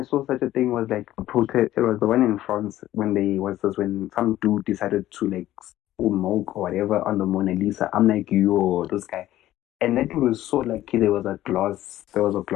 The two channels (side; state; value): right; quieter; 14.2 dB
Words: saw such a thing was like a protest. It was the one in France when some dude decided to like spill milk or whatever on the Mona Lisa. I'm like, yo, this guy. And that thing was so like, there was a glass